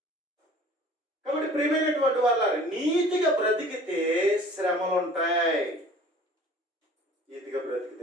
కాబట్టి ప్రియమైనటువంటి వాళ్ళ నీతిగా బ్రతికితే శ్రమలు ఉంటాయి. నీతిగా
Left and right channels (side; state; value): both; normal; correlation 0.48